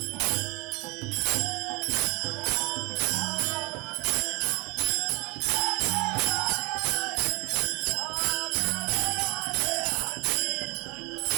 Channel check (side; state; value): left; quieter; 27.0 dB